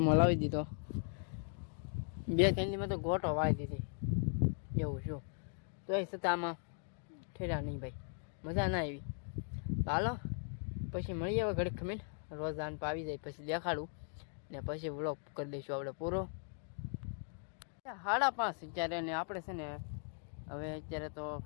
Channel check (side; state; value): right; silent; 52 dB below the other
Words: લાવી દીધો. 2-3 દીમાં તો ગોટો વાળી દીધી એવું શું. તો એ છતાં આમાં ઠેરા નહીં ભાઈ, મજા ના આવી. તો હાલો પછી મળીએ હવે ઘડીક ખમીને. રોજ આન આવી જાય પછી દેખાડું ને પછી વ્લોગ કરી દઈશું આપણે પૂરો. 5:30 અત્યારે ને આપણે છે ને હવે અત્યારે તો